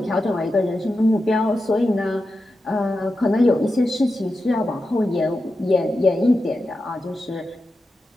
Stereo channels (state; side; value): normal; both; correlation 0.90